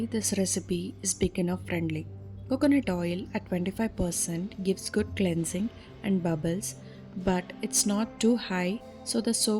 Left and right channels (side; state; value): both; identical; correlation 1.00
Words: this recipe is beginner friendly. Coconut oil at 25% gives good cleansing and bubbles, but it's not too high so the